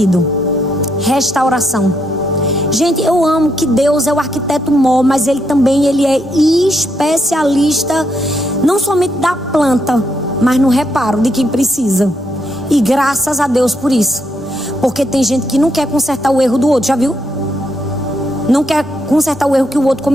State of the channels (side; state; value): both; normal; correlation 0.77